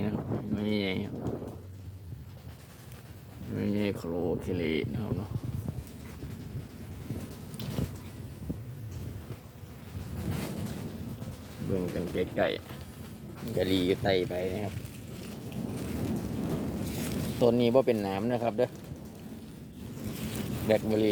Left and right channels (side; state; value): both; identical; correlation 1.00